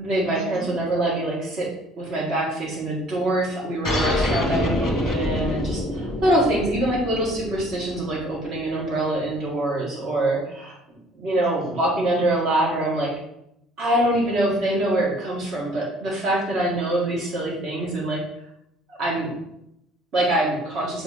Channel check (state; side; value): normal; both; correlation 0.55